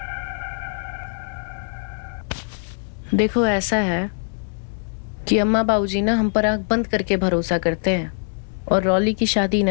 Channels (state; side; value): silent; right; digital silence